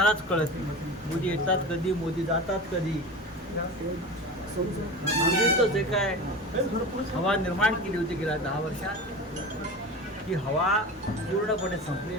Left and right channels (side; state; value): both; normal; correlation 0.31